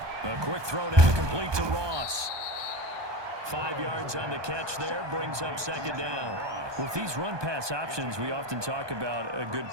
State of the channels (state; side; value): late; left; 1.2 ms